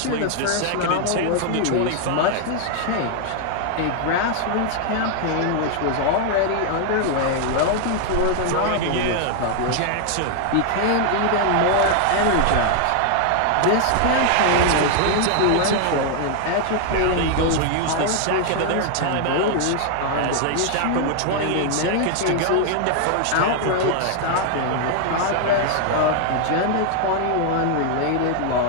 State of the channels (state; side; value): different; both; correlation 0.00